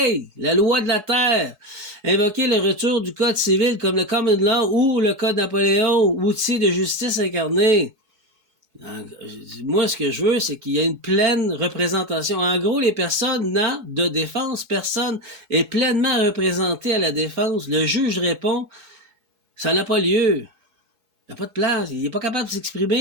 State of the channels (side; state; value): left; late; 4.7 ms